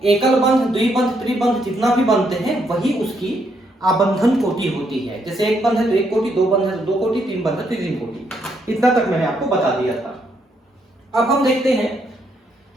एकल बंध, द्विबंध, त्रिबंध जितना भी बनते हैं वही उसकी आबंधन कोटि होती है। जैसे एक बंध है तो एक कोटि, दो बंध है तो दो कोटि, तीन बंध है तो तीन कोटि। इतना तक मैंने आपको बता दिया था। अब हम देखते हैं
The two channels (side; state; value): both; normal; correlation 0.75